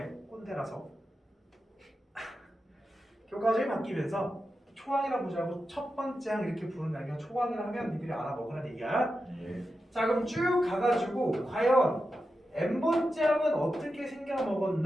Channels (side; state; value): both; normal; correlation 0.90